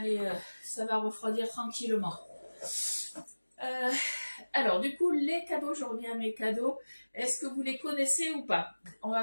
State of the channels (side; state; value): both; inverted; correlation -1.00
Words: va refroidir tranquillement. Alors, du coup, les cadeaux, je reviens à mes cadeaux. Est-ce que vous les connaissez ou pas? On